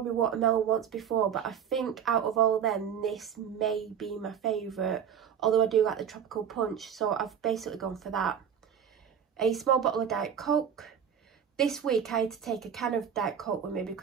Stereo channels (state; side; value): quieter; left; 8.3 dB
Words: watermelon once before, but I think out of all of them, this may be my favourite, although I do like the tropical punch, so I've basically gone for that. A small bottle of Diet Coke. This week I had to take a can of Diet Coke with me